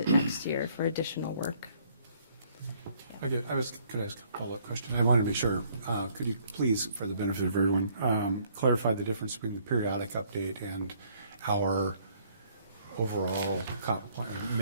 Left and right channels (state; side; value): inverted; both; correlation -0.64